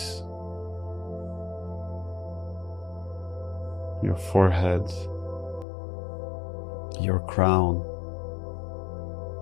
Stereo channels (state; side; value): drops out; right; at 5.7 s